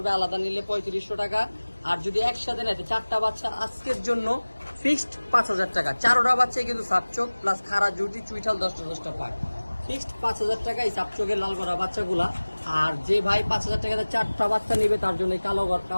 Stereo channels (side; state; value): both; inverted; correlation -1.00